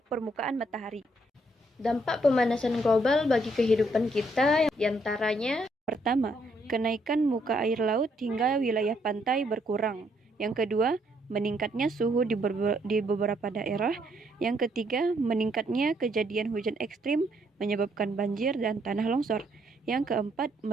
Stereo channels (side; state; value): both; normal; correlation 0.72